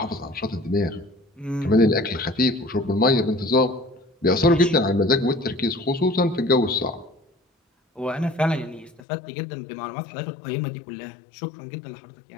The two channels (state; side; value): drops out; right; at 9.0 s